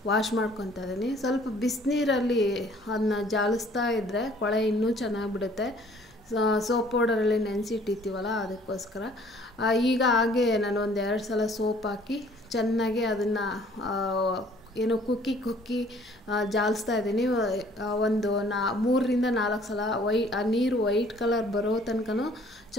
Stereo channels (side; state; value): both; normal; correlation 0.57